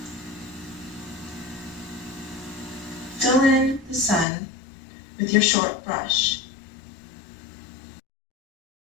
Fill in the sun with your short brush.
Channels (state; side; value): drops out; right; at 4.2 s